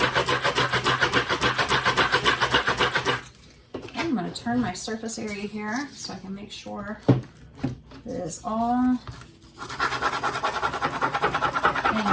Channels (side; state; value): both; identical; correlation 1.00